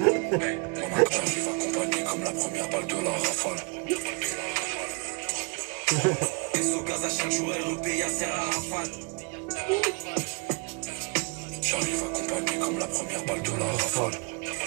J'arrive accompagné comme la première balle de la rafale. Au gaz à chaque jour, elle repaye à Serre à Rafale. J'arrive accompagné comme la première balle de la rafale.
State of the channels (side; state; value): left; quieter; 30.8 dB